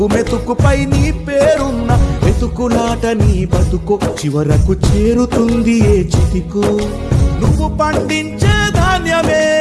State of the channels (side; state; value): both; identical; correlation 1.00